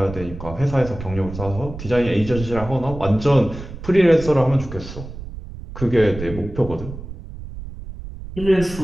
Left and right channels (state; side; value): noise; right; rumble, 11 dB below the sound